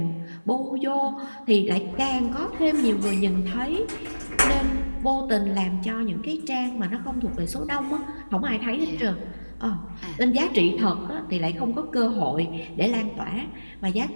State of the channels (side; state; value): both; inverted; correlation -1.00